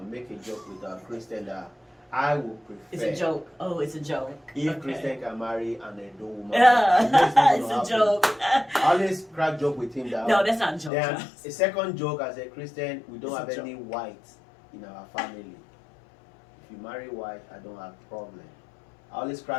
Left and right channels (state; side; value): drops out; right; at 10.9 s